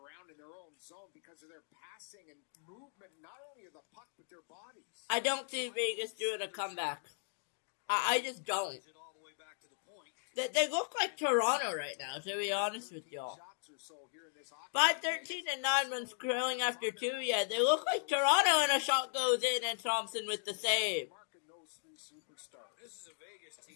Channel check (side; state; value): right; silent; digital silence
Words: in their own zone because of their passing and movement, not only of the puck, but their bodies. I don't see Vegas doing a comeback. I just don't. They look like Toronto right now, to be honest with y'all. By 13-9 when scrolling after 2, yeah, they look like Toronto, and a shot goes in, and Thompson with the save. This is a Vegas